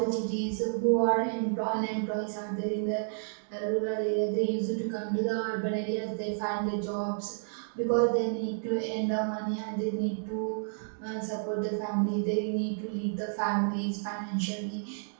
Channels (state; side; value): silent; left; digital silence